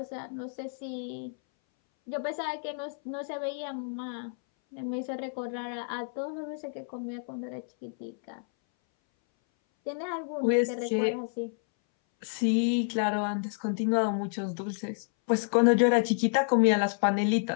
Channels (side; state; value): right; silent; 58 dB below the other